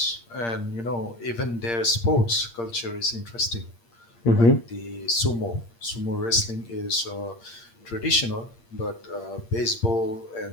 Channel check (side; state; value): right; late; 8.6 ms